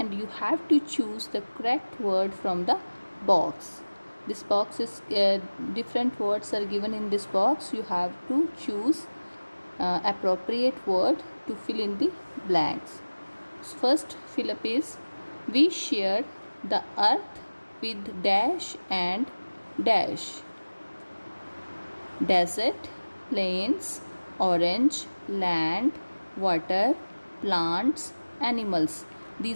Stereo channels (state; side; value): inverted; both; correlation -1.00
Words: you have to choose the correct word from the box. This box is different words are given in this box. You have to choose appropriate word to fill in the blanks. So first fill up is, we share the earth with dash and dash. Desert, plains, orange, land, water, plants, animals.